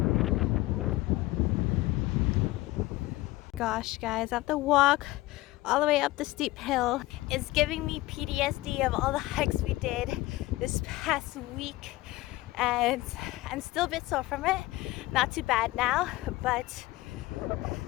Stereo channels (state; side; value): quieter; right; 18.8 dB